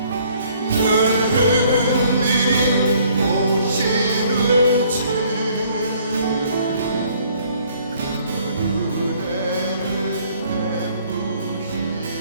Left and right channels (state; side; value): inverted; both; correlation -0.61